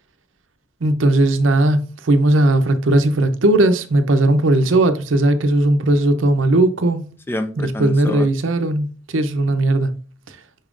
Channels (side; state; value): both; normal; correlation 0.69